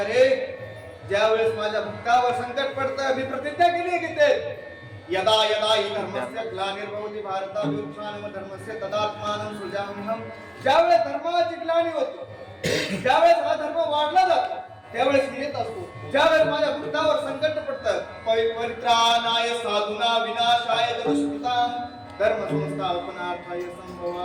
ज्यावेळेस माझ्या भक्तावर संकट पडतं, मी प्रतिज्ञा केली की ते यदा यदा हि धर्मस्य ग्लानिर्भवति भारताभ्युत्थानं धर्मस्य तदात्मानं सृजाम्यहं. ज्यावेळेस धर्माची ग्लानी होते, ज्यावेळेस हा धर्म वाढला जातो, त्यावेळेस मी येत असतो. ज्यावेळेस माझ्या भक्तावर संकट पडतं, परित्राणाय साधूना विनाशाय दुष्कृतां धर्म संस्थापनार्थाय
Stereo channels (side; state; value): both; identical; correlation 1.00